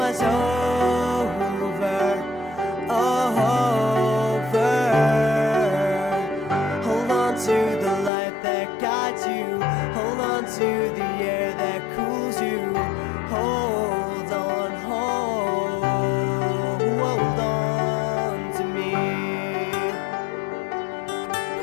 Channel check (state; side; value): drops out; right; at 8.1 s